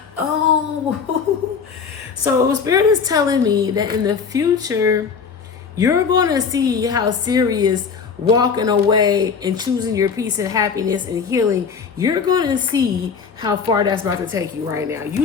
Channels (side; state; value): right; quieter; 5.9 dB